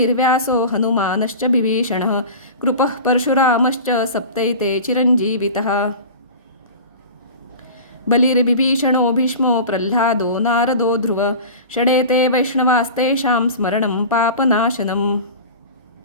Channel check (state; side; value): inverted; both; correlation -0.34